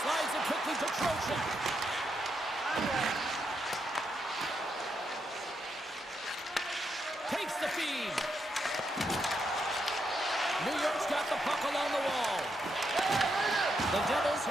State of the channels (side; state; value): both; normal; correlation 0.81